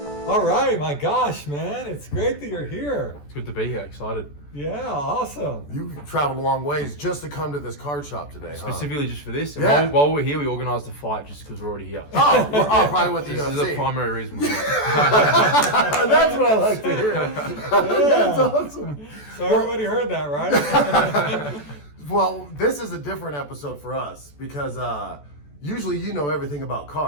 All right, my gosh, man, it's great that you're here. It's good to be here, excited. Yeah, awesome. You traveled a long ways just to come to this card shop today, Specifically just for this. And Yeah. while we're here, we organised a fight just because we're already here. Probably with the This is UFC. the primary reason we're here. That's what I like to hear. That's awesome. So everybody heard that, right? Well, this is a different episode for us because usually you know everything about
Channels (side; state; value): right; late; 14 ms